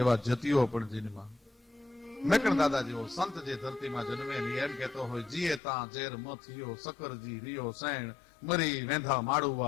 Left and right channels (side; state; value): right; drops out; at 5.6 s